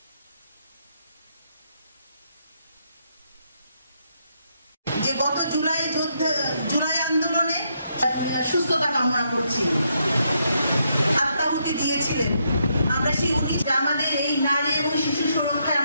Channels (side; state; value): both; inverted; correlation -0.77